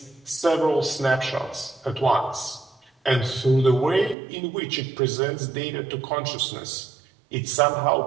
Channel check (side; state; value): left; drops out; at 4.2 s